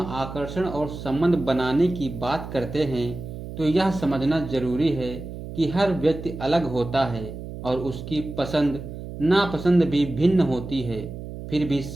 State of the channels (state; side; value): noise; right; hum, 10 dB below the sound